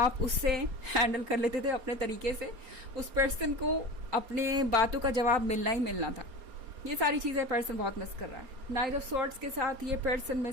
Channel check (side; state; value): left; late; 4.3 ms